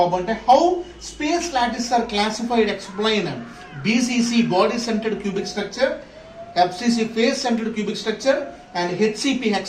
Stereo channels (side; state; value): both; identical; correlation 1.00